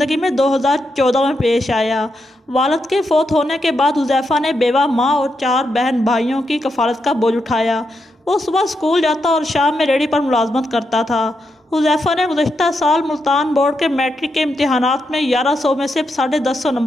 में 2014 में पेश आया। वालिद के फ़ौत होने के बाद हुज़ैफ़ा ने बेवा माँ और 4 बहन भाइयों की कफ़ालत का बोझ उठाया। वो सुबह स्कूल जाता और शाम में रेडी पर मुलाजमत करता था। हुज़ैफ़ा ने गुज़श्ता साल मुल्तान बोर्ड के मैट्रिक के इम्तिहानात में 1100 में से 150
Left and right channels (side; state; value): both; normal; correlation 0.83